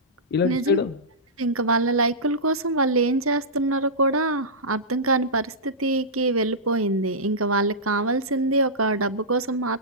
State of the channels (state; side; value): normal; both; correlation -0.15